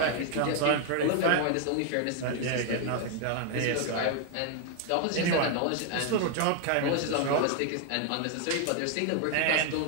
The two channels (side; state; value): both; different; correlation 0.00